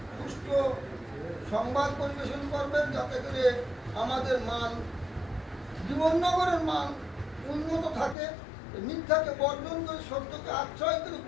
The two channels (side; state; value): right; drops out; at 8.2 s